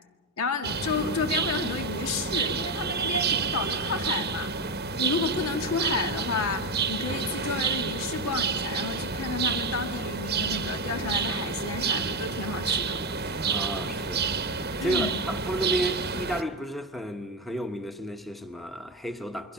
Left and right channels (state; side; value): normal; both; correlation 0.12